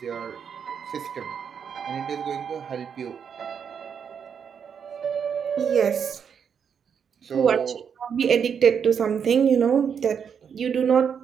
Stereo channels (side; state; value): left; quieter; 7.2 dB